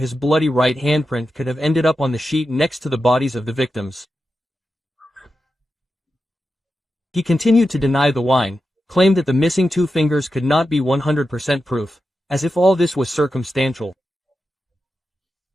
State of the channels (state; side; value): normal; both; correlation 0.90